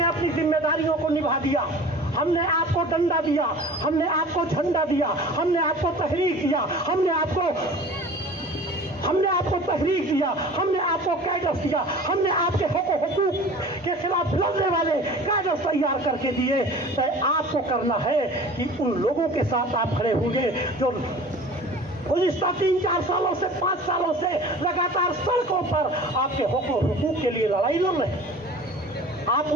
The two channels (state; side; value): normal; both; correlation 0.42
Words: अपनी जिम्मेदारियों को निभा दिया, हमने आपको डंडा दिया, हमने आपको झंडा दिया, हमने आपको तहरीक दिया, हमने आपको तहरीक दिया, हमने आपको कैडर्स दिया, हमने आपके हुकूक के खिलाफ लड़ने वाले कैडर्स तैयार करके दिए। तो आपको करना है कि उन लोगों के साथ आप खड़े होंगे जो गुज़िश्ता 3-4 सालों से 5 सालों से लगातार सड़कों पर आपके हुकूक के लिए लड़ाई लड़ रहे हैं। आप